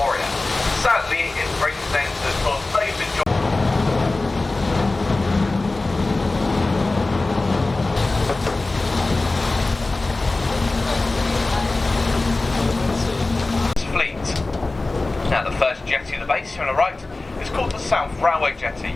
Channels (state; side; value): quieter; right; 3.2 dB